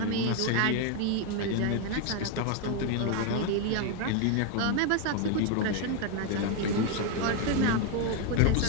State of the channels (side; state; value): both; different; correlation 0.01